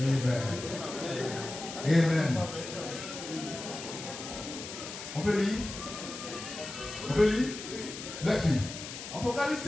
Amen. On peut lire? On peut lire? Let's read. Apocalypse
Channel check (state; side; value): noise; left; hiss, 9 dB below the sound